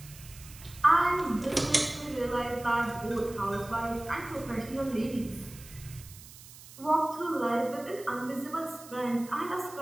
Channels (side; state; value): right; noise; hiss, 18 dB below the sound